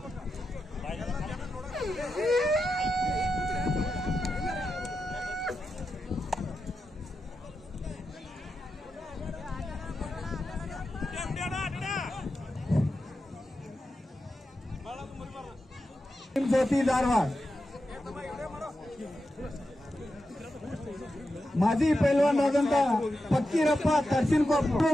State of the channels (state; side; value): normal; both; correlation 0.89